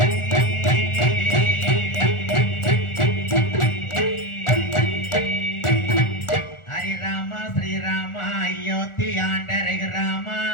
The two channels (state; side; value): late; right; 1.4 ms